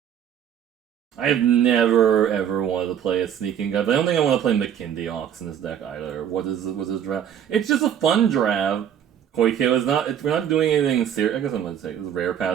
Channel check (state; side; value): quieter; left; 9.3 dB